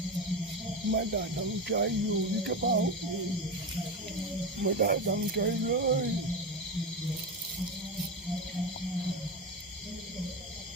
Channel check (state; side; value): normal; both; correlation 0.19